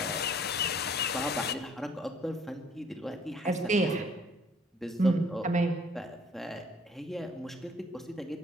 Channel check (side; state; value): both; normal; correlation 0.59